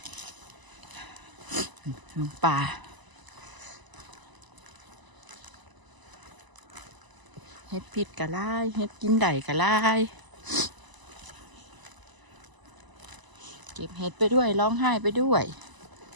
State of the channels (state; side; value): late; left; 1.0 ms